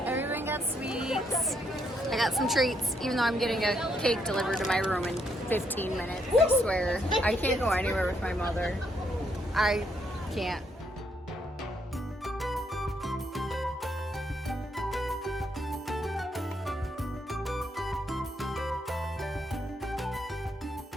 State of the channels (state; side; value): normal; both; correlation 0.74